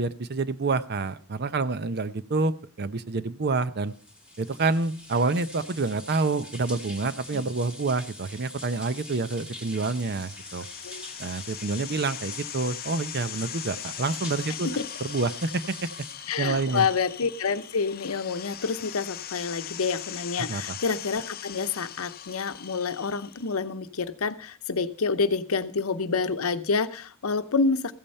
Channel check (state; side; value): normal; both; correlation 0.05